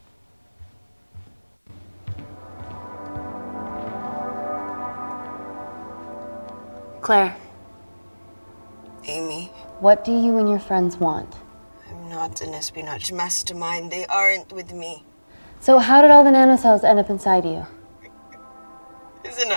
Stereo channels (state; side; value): inverted; both; correlation -1.00